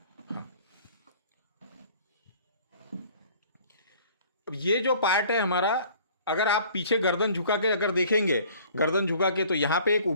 हाँ, अब ये जो पार्ट है हमारा, अगर आप पीछे गर्दन झुका के अगर देखेंगे, गर्दन झुका के, तो यहाँ पे एक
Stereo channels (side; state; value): both; inverted; correlation -0.52